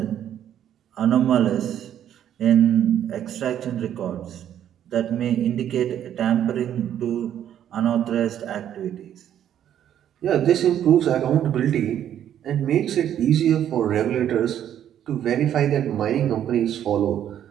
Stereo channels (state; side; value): quieter; left; 10.4 dB